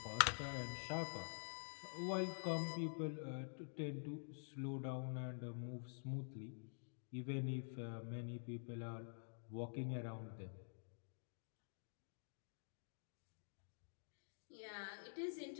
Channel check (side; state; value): right; silent; digital silence